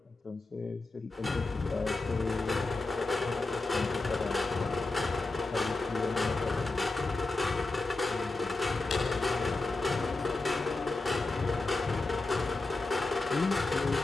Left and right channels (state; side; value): quieter; right; 3.3 dB